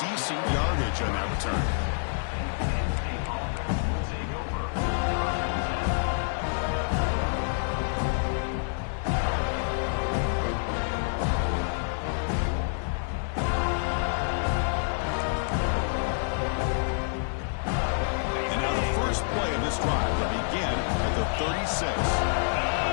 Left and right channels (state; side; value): silent; right; digital silence